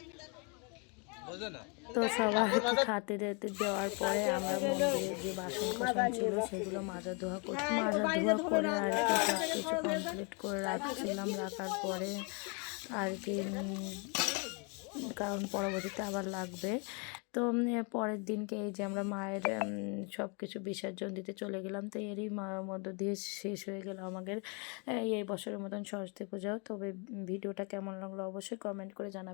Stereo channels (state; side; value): quieter; right; 34.4 dB